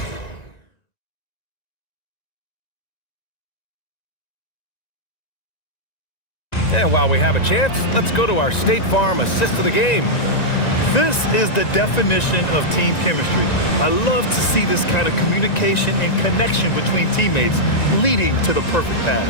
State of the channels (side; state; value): right; late; 1.9 ms